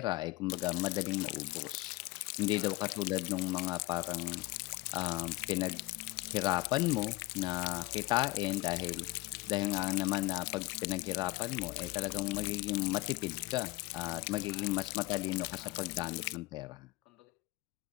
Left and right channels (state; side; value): quieter; right; 20.3 dB